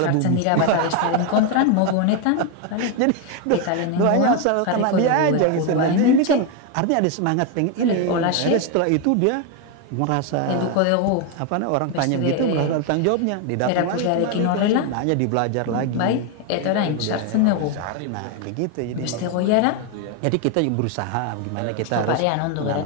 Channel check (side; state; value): both; different; correlation 0.01